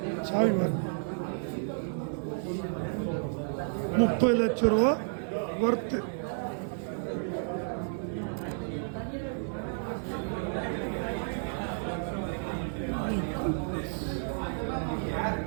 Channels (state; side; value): silent; left; digital silence